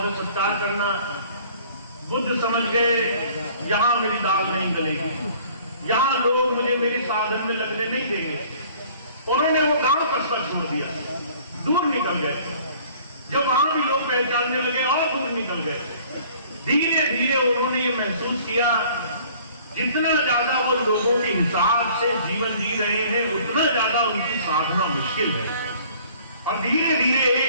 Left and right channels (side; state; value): both; inverted; correlation -0.53